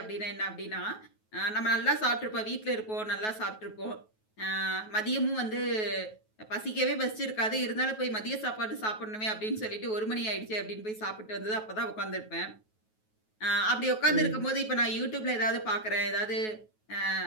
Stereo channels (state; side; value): late; right; 9.3 ms